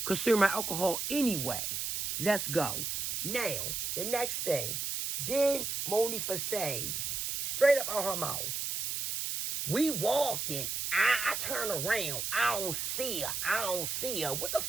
consume alcohol anyway. Let's go. Now, the next thing. Then Monifa said, straight up out her mouth, we walking. I turn around. I don't see her. I don't see her. What the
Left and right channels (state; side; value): noise; right; hiss, 2 dB below the sound